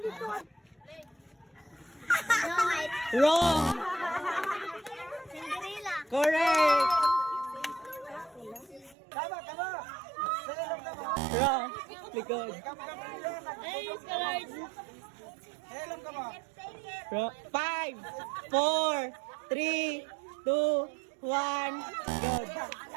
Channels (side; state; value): left; drops out; at 9.0 s